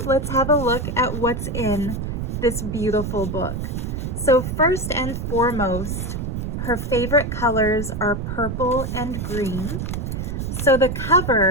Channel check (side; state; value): right; noise; rumble, 4 dB below the sound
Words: let's have a look at what's in this beautiful book. So first and foremost, her favorite colors are purple and green. So the